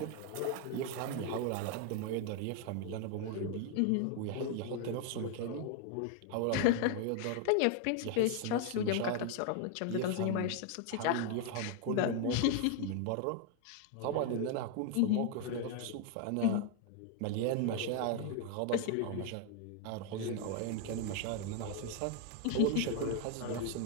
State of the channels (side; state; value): both; different; correlation 0.01